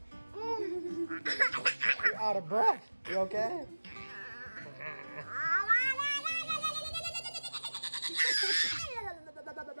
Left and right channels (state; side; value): inverted; both; correlation -1.00